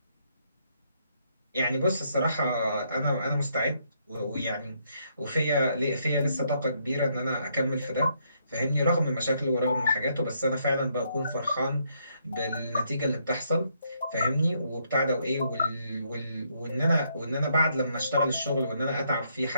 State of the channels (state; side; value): inverted; both; correlation -0.73